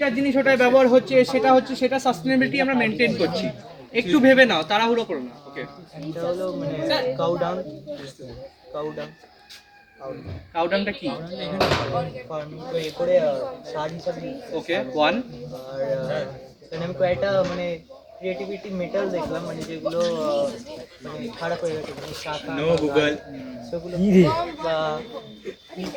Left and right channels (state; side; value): identical; both; correlation 1.00